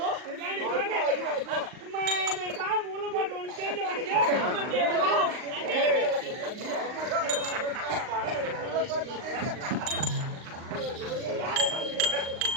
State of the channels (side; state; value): left; late; 39 ms